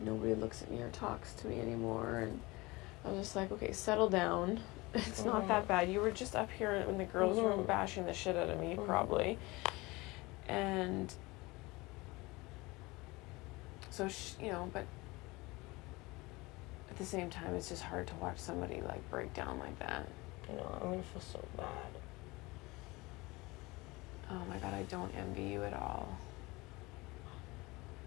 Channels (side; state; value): right; quieter; 22.9 dB